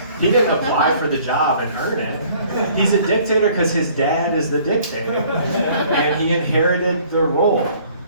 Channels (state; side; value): inverted; both; correlation -0.57